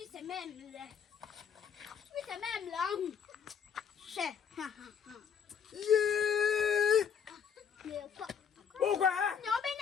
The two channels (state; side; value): quieter; right; 7.4 dB